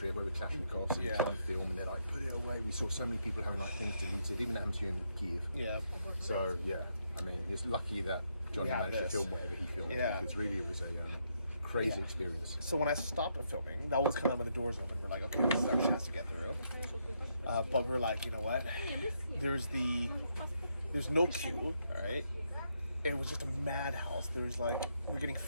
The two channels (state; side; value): inverted; both; correlation -0.78